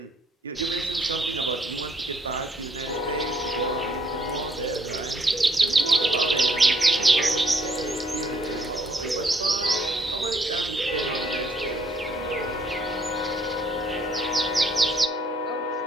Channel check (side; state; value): both; normal; correlation 0.68